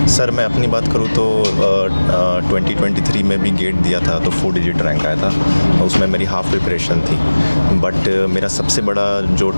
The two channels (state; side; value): inverted; both; correlation -1.00